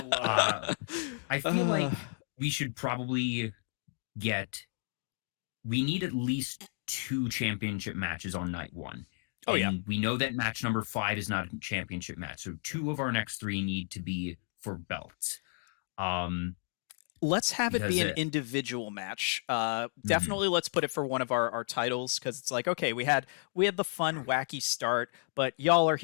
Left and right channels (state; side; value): silent; right; digital silence